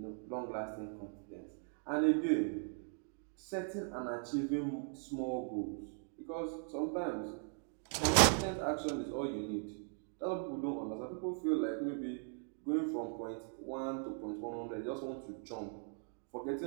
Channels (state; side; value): silent; left; 52 dB below the other